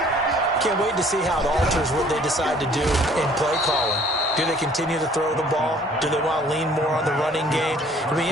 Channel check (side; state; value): both; normal; correlation 0.56